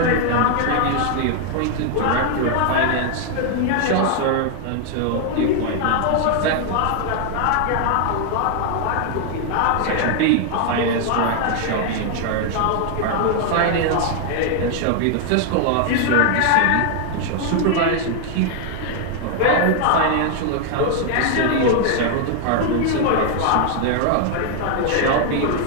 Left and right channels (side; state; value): both; different; correlation 0.00